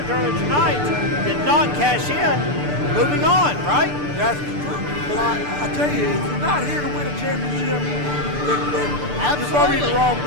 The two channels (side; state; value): left; late; 6.8 ms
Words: earlier tonight did not cash in. Moving on, right? That's true. But I tell you, if you're not here to win a championship, then you're probably in the wrong